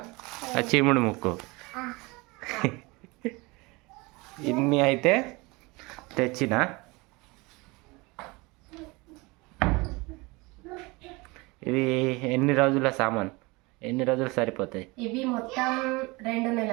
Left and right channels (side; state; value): left; quieter; 24.7 dB